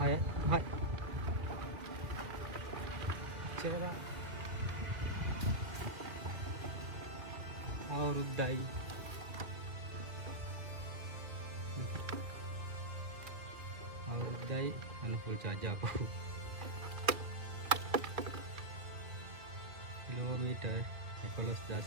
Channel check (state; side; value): late; left; 2.1 ms